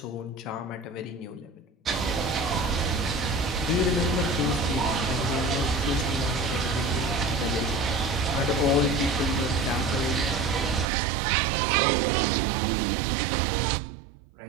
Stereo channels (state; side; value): drops out; left; at 10.9 s